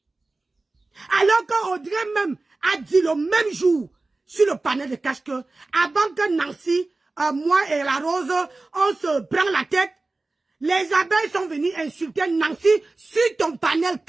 Alors qu'Audrey même a dit le même jour sur le panel de cash que avant que Nancy, moi et la Rose, on se prend la tête, les abeilles sont venues insulter Nancy sur ton panel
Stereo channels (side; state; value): left; quieter; 3.3 dB